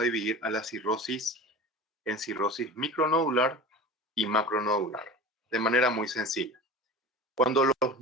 dividir a la cirrosis en cirrosis micronodular y macronodular, de manera muy sencilla. Cuando los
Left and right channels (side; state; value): both; normal; correlation 0.34